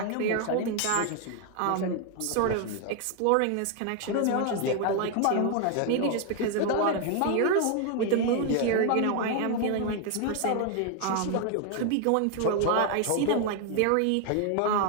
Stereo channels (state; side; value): different; both; correlation 0.01